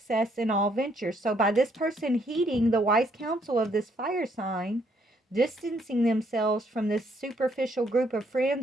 in all ventures. So by this person heeding the wise counsel of this fire sign, distancing themselves from this superficial group of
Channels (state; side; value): normal; both; correlation 0.70